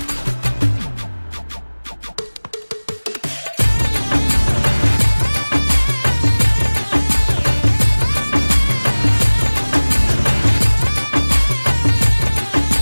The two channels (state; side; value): inverted; both; correlation -1.00